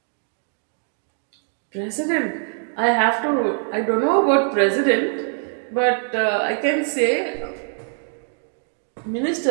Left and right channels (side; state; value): left; silent; 64 dB below the other